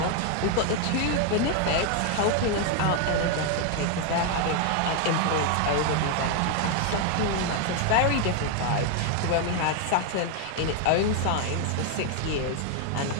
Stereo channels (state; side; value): different; both; correlation 0.01